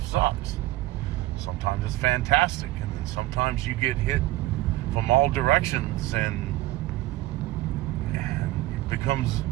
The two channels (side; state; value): left; quieter; 17.3 dB